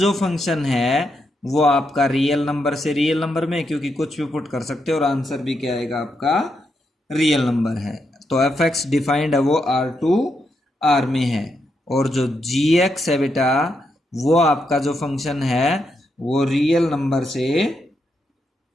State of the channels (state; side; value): normal; both; correlation 0.81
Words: फंक्शन है वो आपका रियल नंबर से रियल नंबर में, क्योंकि कुछ भी पुट कर सकते हो और आंसर भी क्या आएगा आपका रियल नंबर है, तो एफ एक्स डिफाइंड है वो R2R में है, और जो gx है बेटा वो आपका जो फंक्शन है वो रियल नंबर से